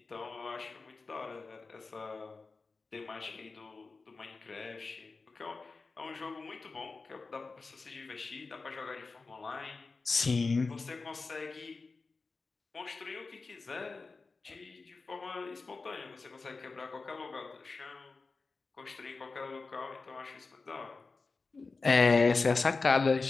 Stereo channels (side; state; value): right; quieter; 4.1 dB